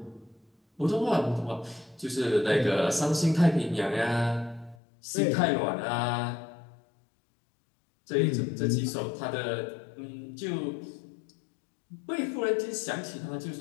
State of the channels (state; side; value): drops out; right; at 4.8 s